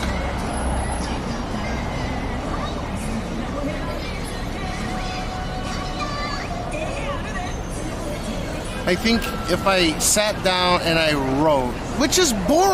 I think if I sat down and I wrote, which is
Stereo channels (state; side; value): identical; both; correlation 1.00